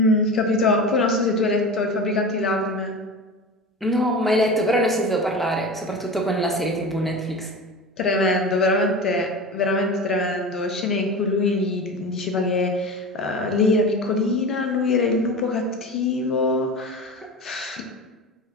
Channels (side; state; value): both; normal; correlation 0.30